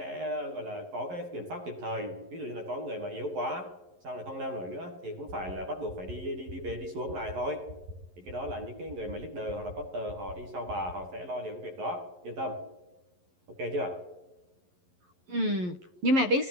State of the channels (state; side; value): late; left; 11 ms